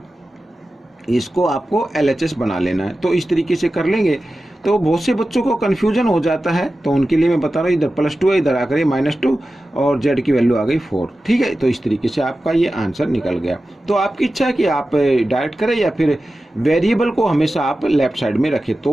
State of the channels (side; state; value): both; normal; correlation 0.94